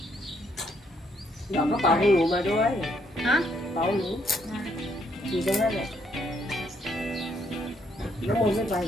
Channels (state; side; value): normal; both; correlation 0.71